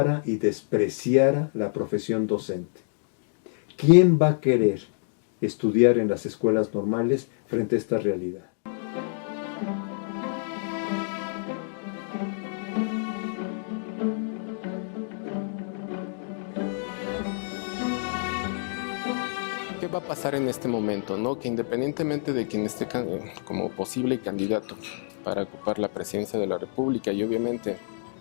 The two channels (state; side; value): silent; right; digital silence